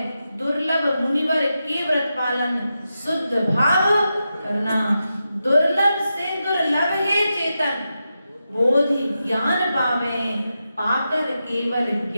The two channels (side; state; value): both; inverted; correlation -0.89